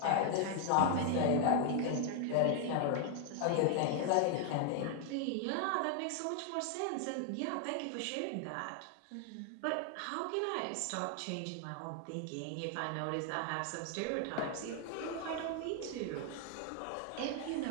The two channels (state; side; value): different; both; correlation 0.00